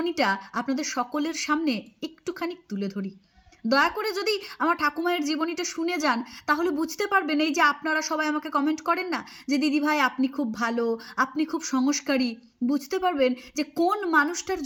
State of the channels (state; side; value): identical; both; correlation 1.00